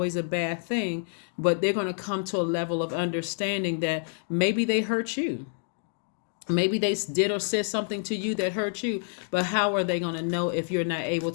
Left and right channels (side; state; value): right; silent; 59 dB below the other